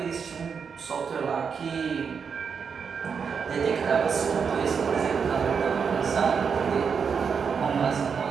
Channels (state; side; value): quieter; left; 6.2 dB